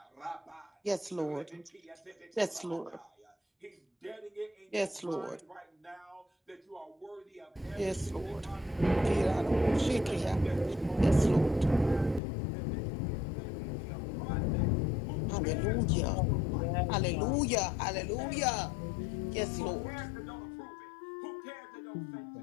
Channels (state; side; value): drops out; right; at 12.2 s